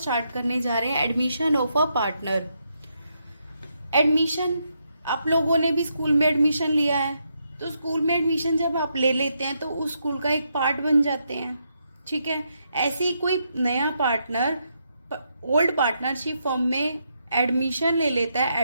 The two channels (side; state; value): both; inverted; correlation -0.80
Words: करने जा रहे हैं, admission of a partner. Admission, आप लोगों ने भी स्कूल में एडमिशन लिया है, तो स्कूल में एडमिशन जब आप ले लेते हैं तो उस स्कूल का एक पार्ट बन जाते हैं। ठीक है, ऐसे ही कोई नया पार्टनर ओल्ड पार्टनरशिप फॉर्म में एडमिशन ले लेता है,